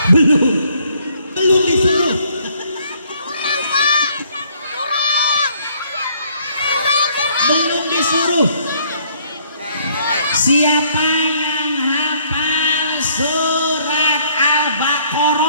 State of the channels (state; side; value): inverted; both; correlation -0.64